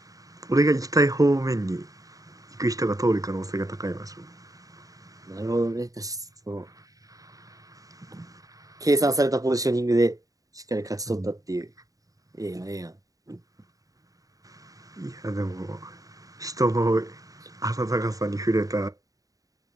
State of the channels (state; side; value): late; left; 0.17 ms